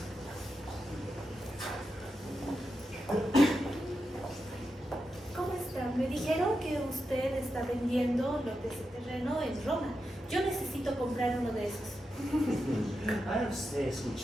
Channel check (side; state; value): both; normal; correlation 0.88